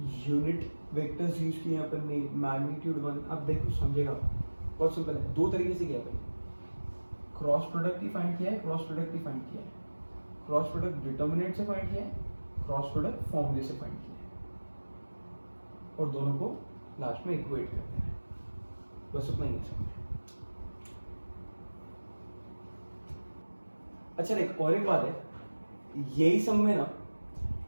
यूनिट वेक्टर्स यूज किए अपन ने, मैग्नीट्यूड 1। अब देखो समझेगा, बहुत सिंपल है, दो तरीके से किया अपन, क्रॉस प्रोडक्ट ही फाइंड किया है, क्रॉस प्रोडक्ट ही फाइंड किया है, क्रॉस प्रोडक्ट डिटर्मिनेंट से फाइंड किया है, क्रॉस प्रोडक्ट फॉर्मूले से फाइंड किया है, और दोनों को लास्ट में इक्वेट करते हैं। बस उतना ही है सब। अच्छा देख, और एक बात है, यही सब में ना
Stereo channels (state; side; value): inverted; both; correlation -1.00